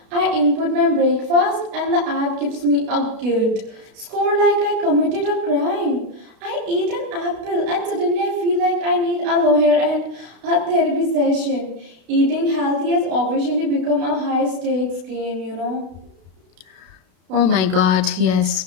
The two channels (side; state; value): left; late; 32 ms